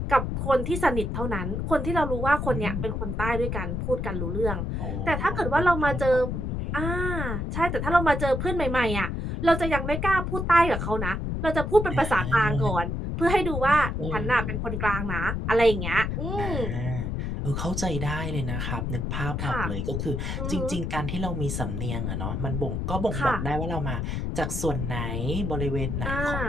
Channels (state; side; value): noise; left; rumble, 2 dB below the sound